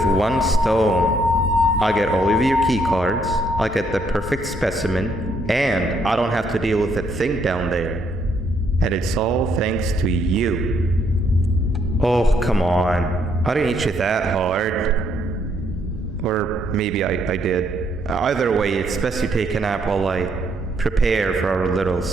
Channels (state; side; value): normal; both; correlation 0.72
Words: one stone. I get all of your key cards, I get the perfect specimen, and I don't have to deal with that thing down there. And it's all thanks to you. Oh, come on. I didn't hit you that hard. Or maybe I did. Either way, it's best you take a nap while I prepare for our little